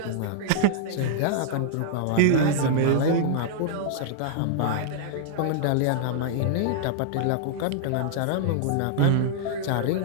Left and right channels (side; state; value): both; different; correlation -0.01